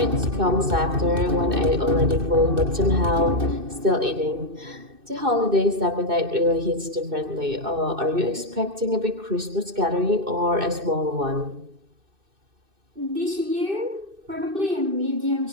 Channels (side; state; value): left; late; 2.6 ms